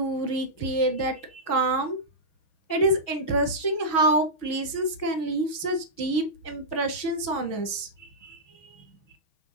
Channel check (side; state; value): right; late; 6.3 ms